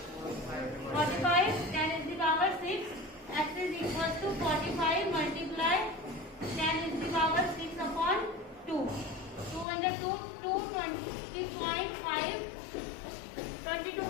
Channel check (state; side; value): drops out; right; at 9.7 s